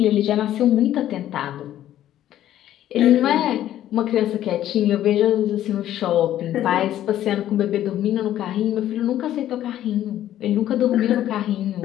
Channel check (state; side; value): quieter; right; 12.3 dB